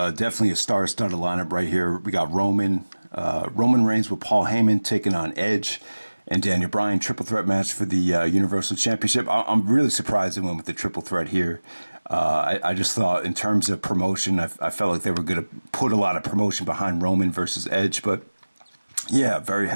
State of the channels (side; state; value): both; inverted; correlation -1.00